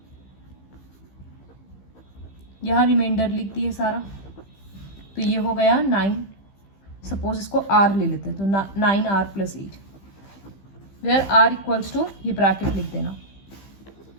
यहाँ रिमाइंडर लिख दिए सारा, तो ये हो गया 9। सपोज इसको r ले लेते हैं, तो 9r + 8, where r equals to ये ब्रैकेट लिख देना,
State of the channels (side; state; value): right; late; 15 ms